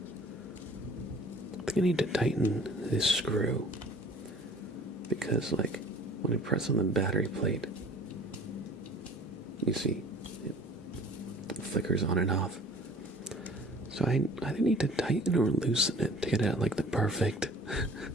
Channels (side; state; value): both; normal; correlation 0.49